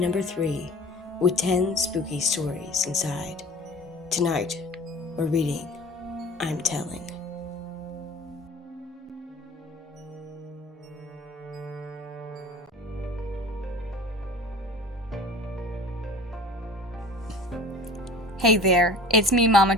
3, with 10 spooky stories inside. Tonight, we're reading I'm Telling. Hey there, it's me, Mama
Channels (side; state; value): both; normal; correlation 0.43